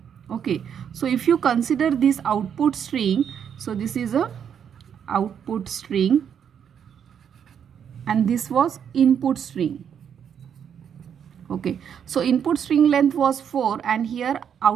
Okay, so if you consider this output string, so this is a output string and this was input string. Okay, so input string length was 4 and here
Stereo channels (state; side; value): quieter; left; 8.2 dB